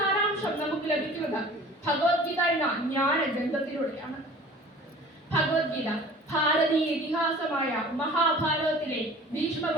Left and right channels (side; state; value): both; normal; correlation 0.45